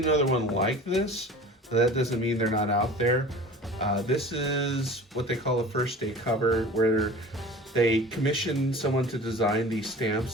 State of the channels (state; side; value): normal; both; correlation 0.40